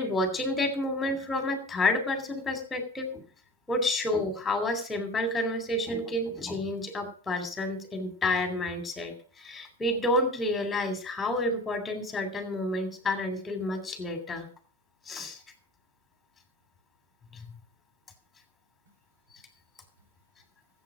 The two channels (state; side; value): normal; both; correlation 0.39